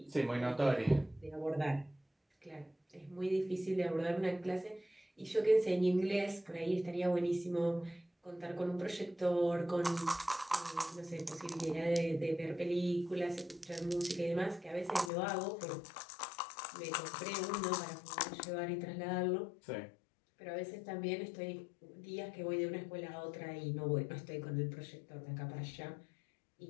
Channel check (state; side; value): drops out; right; at 15.1 s